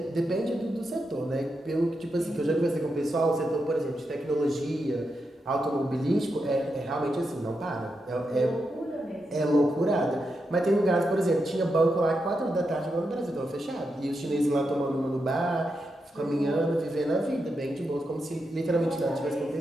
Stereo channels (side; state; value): both; normal; correlation 0.86